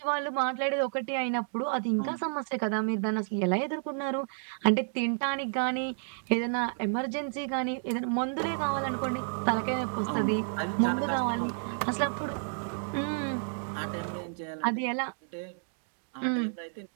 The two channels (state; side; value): silent; left; digital silence